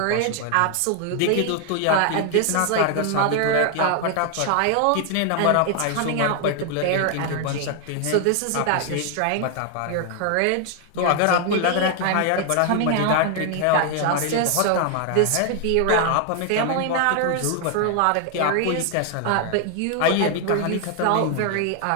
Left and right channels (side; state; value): both; different; correlation 0.00